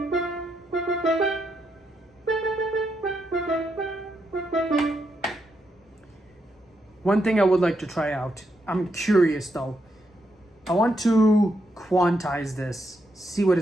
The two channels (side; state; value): both; normal; correlation 0.81